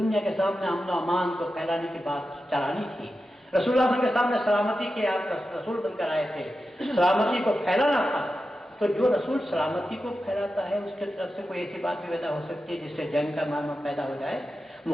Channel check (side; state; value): both; normal; correlation 0.91